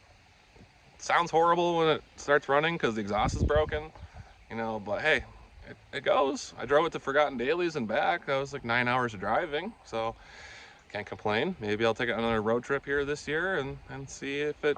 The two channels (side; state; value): both; identical; correlation 1.00